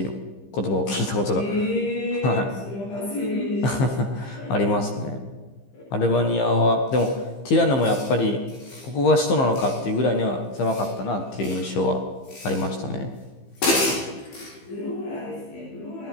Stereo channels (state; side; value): late; right; 15 ms